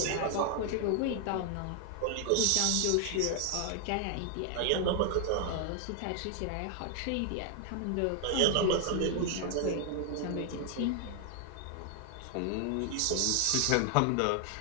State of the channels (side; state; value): both; different; correlation 0.00